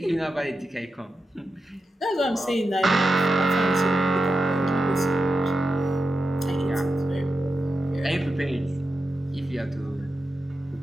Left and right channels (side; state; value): both; normal; correlation 0.90